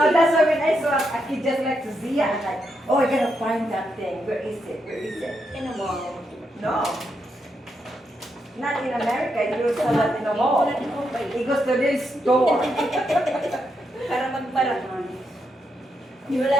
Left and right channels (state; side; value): normal; both; correlation 0.81